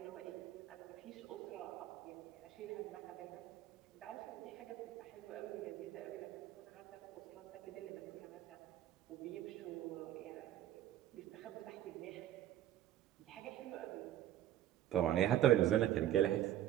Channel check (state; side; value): quieter; left; 12.3 dB